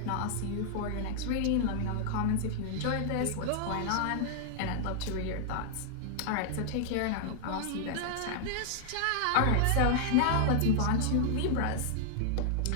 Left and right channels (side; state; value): both; different; correlation -0.01